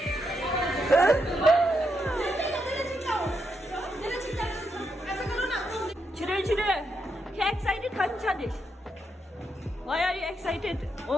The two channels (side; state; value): both; normal; correlation 0.81